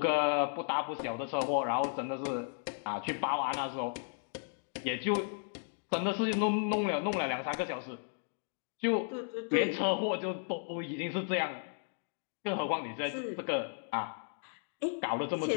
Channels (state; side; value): silent; right; digital silence